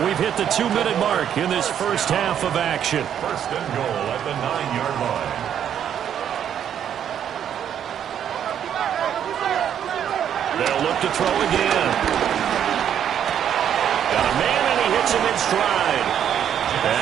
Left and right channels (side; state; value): left; quieter; 9.3 dB